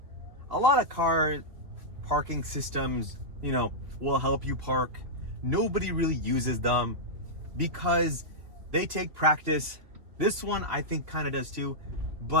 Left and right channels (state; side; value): late; left; 3.3 ms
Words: a lot of car parking systems, you know, will help you park. Nobody really uses them because they take practice. This one I think kind of does too,